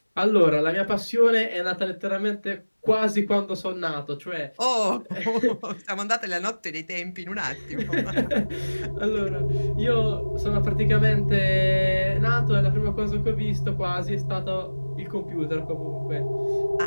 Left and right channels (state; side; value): inverted; both; correlation -1.00